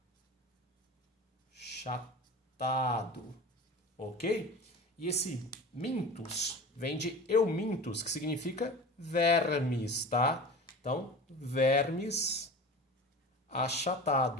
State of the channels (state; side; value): normal; both; correlation 0.34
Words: achatado, ok? E esse mintus vem de eumintus, que significa vermes, tá? Então, vermes